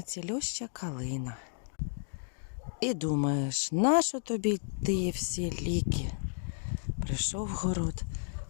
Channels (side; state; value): right; silent; digital silence